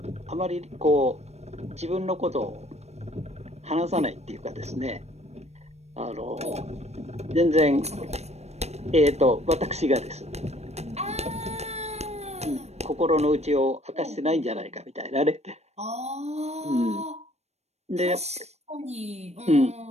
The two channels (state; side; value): late; left; 0.31 ms